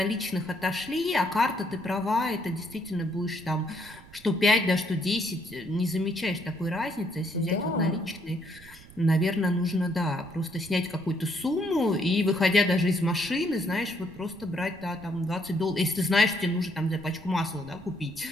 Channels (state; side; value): noise; right; rumble, 21 dB below the sound